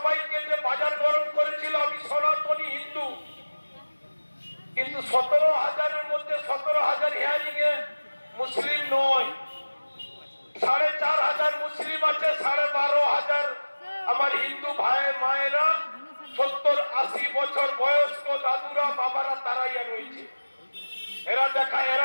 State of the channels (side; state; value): both; inverted; correlation -1.00